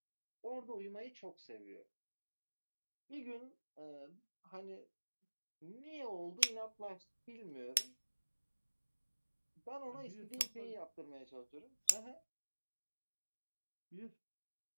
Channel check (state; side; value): inverted; both; correlation -1.00